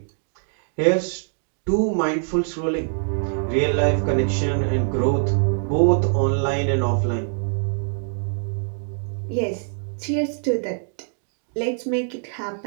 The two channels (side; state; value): left; silent; digital silence